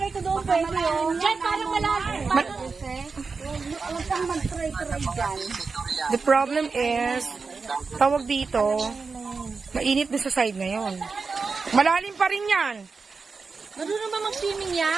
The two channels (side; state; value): left; quieter; 4.6 dB